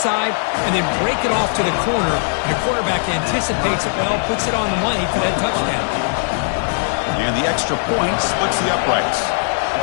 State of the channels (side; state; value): right; silent; digital silence